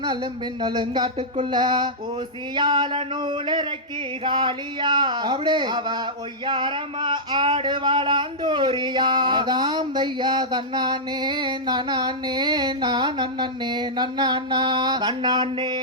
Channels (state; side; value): normal; both; correlation -0.11